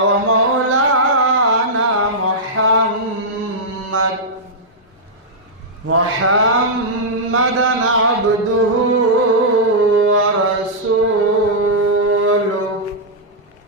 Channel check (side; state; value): both; normal; correlation -0.09